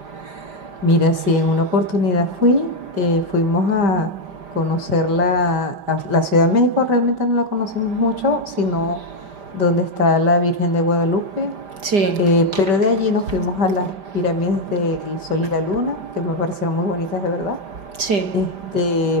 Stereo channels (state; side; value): late; left; 5.0 ms